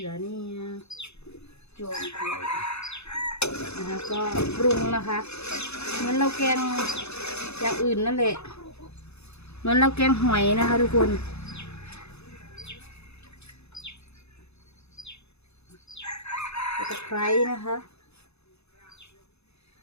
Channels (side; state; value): right; late; 0.80 ms